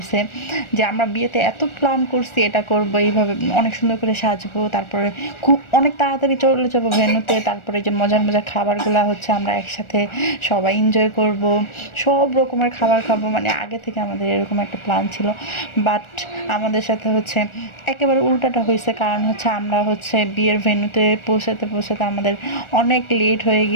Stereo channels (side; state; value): right; late; 1.4 ms